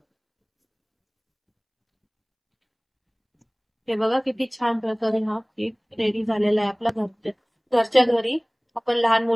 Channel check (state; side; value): identical; both; correlation 1.00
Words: हे बघा किती छान प्रकारे हा केक रेडी झालेला आहे आपला. घरच्या घरी आपण लहान